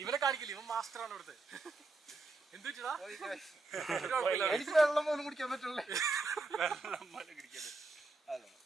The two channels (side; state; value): left; quieter; 3.4 dB